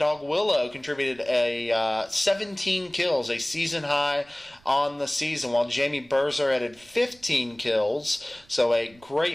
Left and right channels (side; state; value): right; noise; rumble, 29 dB below the sound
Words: contributed a 17 kills, a season high on the season, while Jamie Berzer added 15 kills. So a